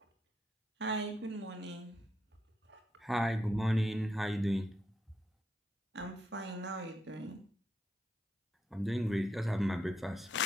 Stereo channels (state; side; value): normal; both; correlation 0.80